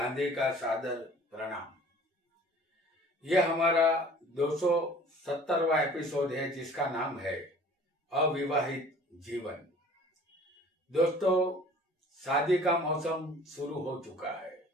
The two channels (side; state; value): both; normal; correlation 0.48